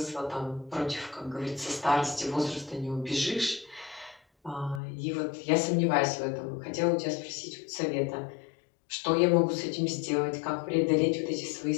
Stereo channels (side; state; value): right; drops out; at 4.8 s